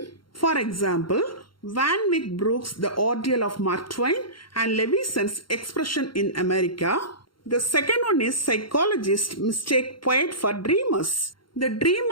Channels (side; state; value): right; late; 0.73 ms